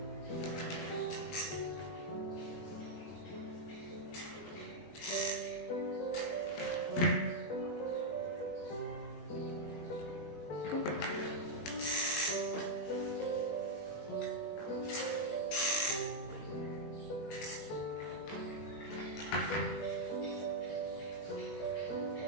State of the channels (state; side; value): late; right; 19 ms